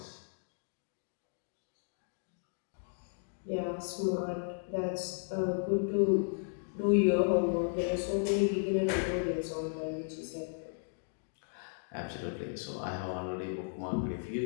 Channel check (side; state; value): right; silent; digital silence